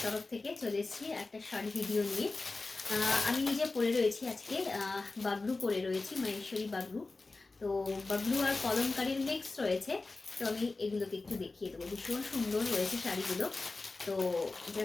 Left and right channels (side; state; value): right; quieter; 3.5 dB